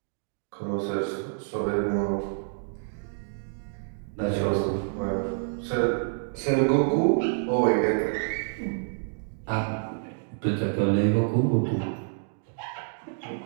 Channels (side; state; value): left; silent; digital silence